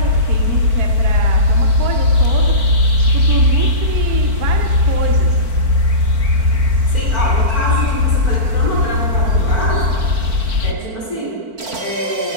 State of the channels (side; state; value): left; late; 4.5 ms